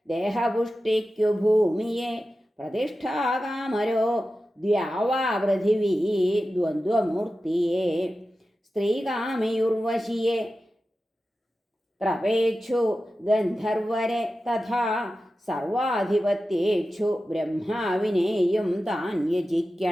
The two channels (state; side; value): normal; both; correlation 0.93